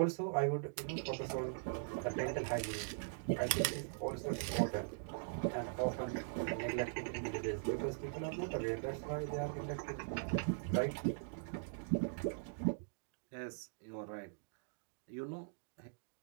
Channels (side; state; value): left; silent; digital silence